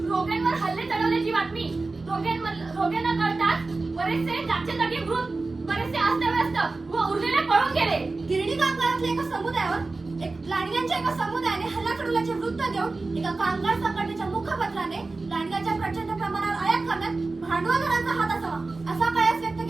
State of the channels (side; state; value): left; quieter; 3.5 dB